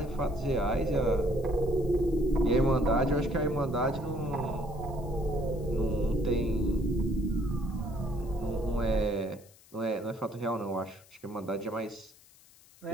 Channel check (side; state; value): left; noise; hiss, 26 dB below the sound